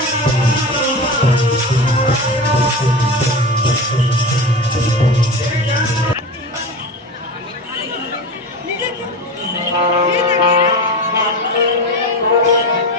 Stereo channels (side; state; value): both; normal; correlation 0.27